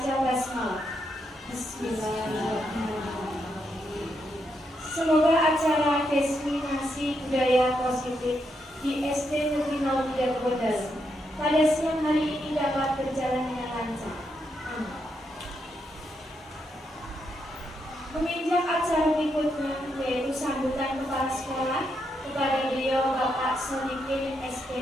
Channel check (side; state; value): both; normal; correlation 0.81